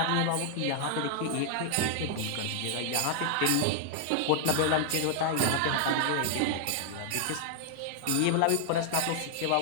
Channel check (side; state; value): both; different; correlation 0.00